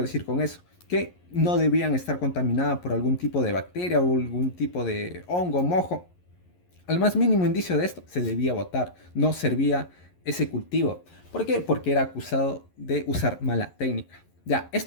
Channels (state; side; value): late; right; 11 ms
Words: decir con eso? Que no debían estar contaminadas por algún tipo de bacteria o algún tipo de hongo, mojo. Al más mínimo indicio de esto, se debía botar. No servía ese cultivo. ¿Por qué? Porque era acusado de usar mala técnica. Ya,